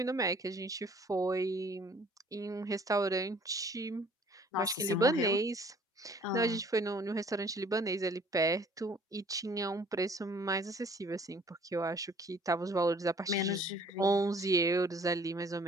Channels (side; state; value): both; normal; correlation 0.55